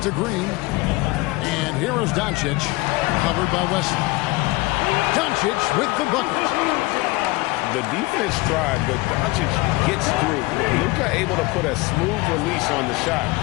to Green. And here is Doncic, covered by Wesley. Doncic with the bucket. The defense tried, but Doncic gets through. Luka able to put a smooth release on the shot,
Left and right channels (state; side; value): quieter; right; 22.4 dB